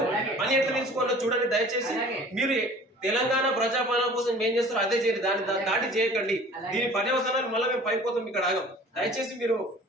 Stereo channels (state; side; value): normal; both; correlation 0.47